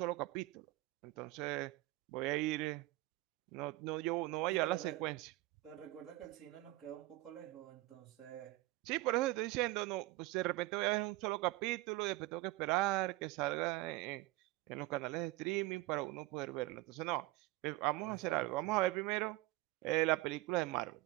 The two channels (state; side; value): quieter; left; 19.1 dB